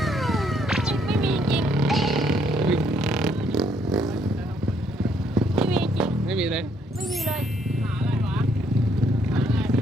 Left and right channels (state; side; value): normal; both; correlation 0.70